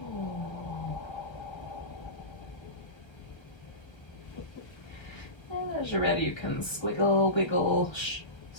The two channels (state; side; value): late; right; 1.3 ms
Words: And as you're ready, you can squiggle, wiggle,